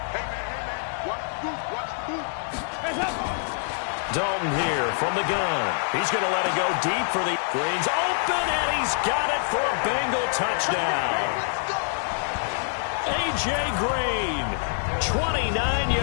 Dalton here from the gun. He's going to let it go deep for the Green's open, and he's got it for a Bengal touchdown. A.J. Green, 29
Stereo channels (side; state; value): right; silent; 60 dB below the other